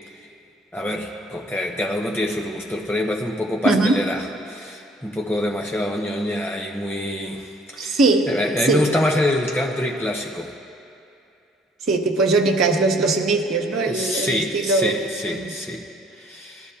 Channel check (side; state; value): both; normal; correlation 0.59